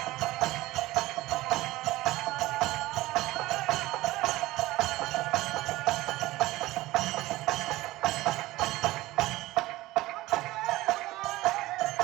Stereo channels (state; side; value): quieter; left; 18.1 dB